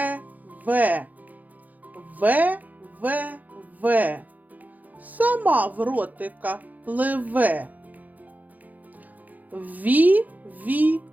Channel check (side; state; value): left; late; 0.080 ms